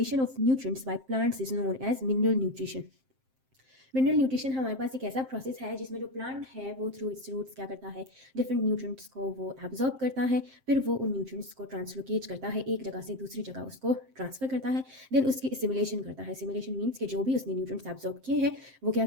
of nutrients by plants is known as mineral nutrition. Mineral nutrition हमारे पास एक ऐसा प्रोसेस है जिसमें जो प्लांट है वो थ्रू इट्स रूट्स क्या करता है, डिफरेंट न्यूट्रिएंट्स को वो एब्जॉर्ब करता है, फिर वो उन न्यूट्रिएंट्स को ट्रांसलोकेट करता है, एक जगह से दूसरी जगह उसको ट्रांसफर करता है, देन उसकी एसिमिलेशन करता है। एसिमिलेशन मीन्स कि जो भी उसने न्यूट्रिएंट्स एब्जॉर्ब किए हैं वो क्या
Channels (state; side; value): late; left; 7.6 ms